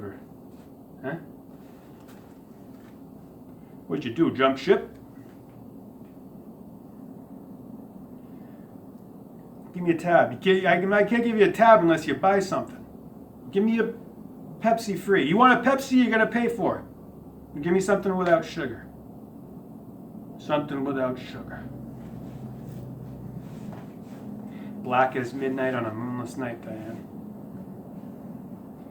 Huh? What'd you do, jump ship? Give me a tab. I can't give you a tab unless you buy something. Give me a Pepsi free. You want a Pepsi, you're gonna pay for it. Give me something without sugar. Something without sugar. Black as midnight on a moonless night, Diane.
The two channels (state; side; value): identical; both; correlation 1.00